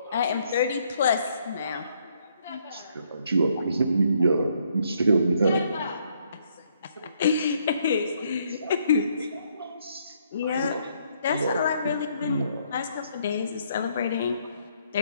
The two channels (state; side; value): inverted; both; correlation -0.70